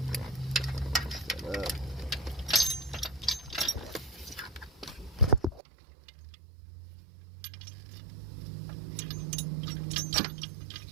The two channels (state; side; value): drops out; left; at 5.6 s